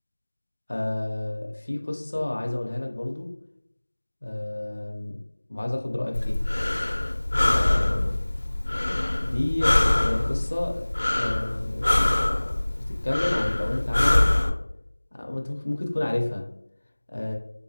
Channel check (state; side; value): inverted; both; correlation -1.00